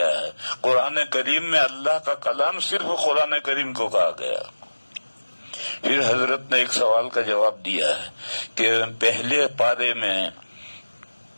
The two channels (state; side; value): inverted; both; correlation -1.00